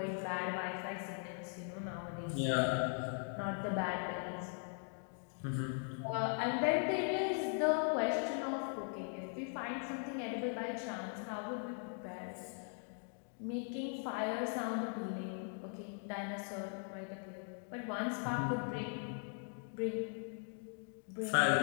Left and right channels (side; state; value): right; silent; 51 dB below the other